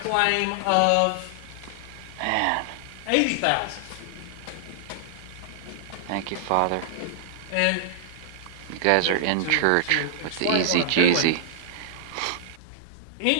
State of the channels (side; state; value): both; different; correlation -0.01